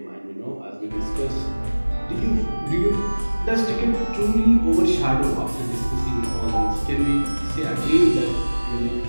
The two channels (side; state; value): both; inverted; correlation -1.00